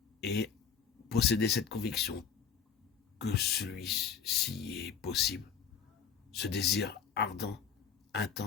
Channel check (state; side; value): quieter; right; 7.0 dB